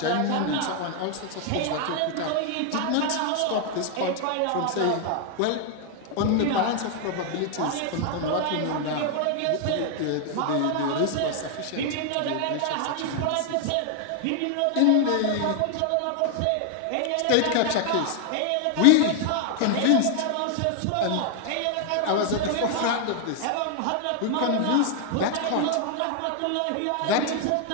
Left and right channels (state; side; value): different; both; correlation 0.00